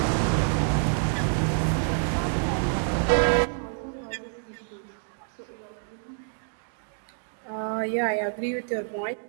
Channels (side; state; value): left; silent; digital silence